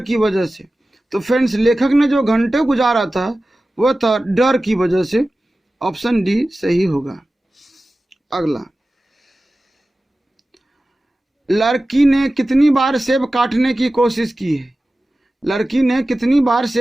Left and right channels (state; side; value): normal; both; correlation 0.95